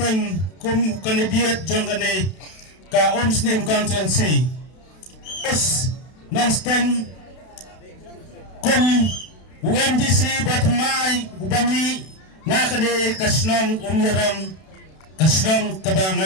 kum kandidat jong kene ka Omsning constituency. Yes, non-stang kum UMDC batmay ubami na kene kasnong umirang kasnong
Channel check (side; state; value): right; late; 32 ms